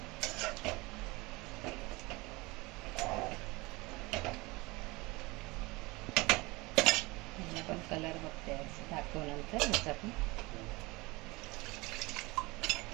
पण कलर बघते दाखवल्यानंतर ह्याचा पण.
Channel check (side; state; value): left; quieter; 23.7 dB